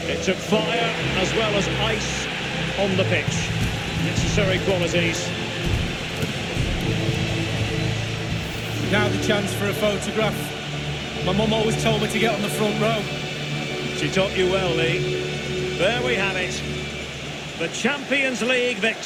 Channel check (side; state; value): both; identical; correlation 1.00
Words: It took fire as well as ice on the pitch. Necessary qualities. Now the chance for a photograph. My mum always told me to get on the front row. She taught you well, Lee. There we have it. The Champions League